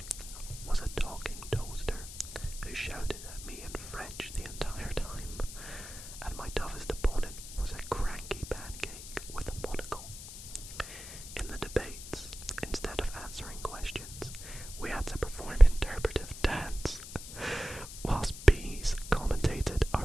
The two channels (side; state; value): left; noise; hiss, 12 dB below the sound